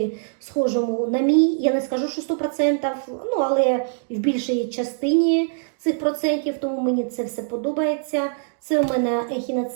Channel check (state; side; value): silent; left; digital silence